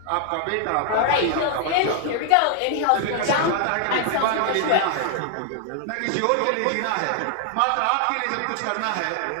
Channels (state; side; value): different; both; correlation 0.00